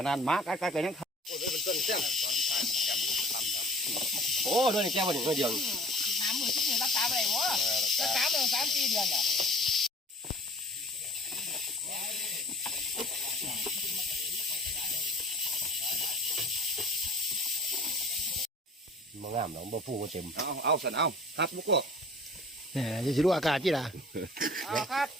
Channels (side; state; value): both; normal; correlation 0.47